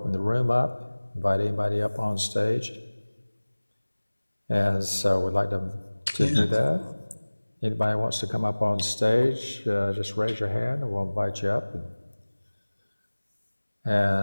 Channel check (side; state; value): both; inverted; correlation -1.00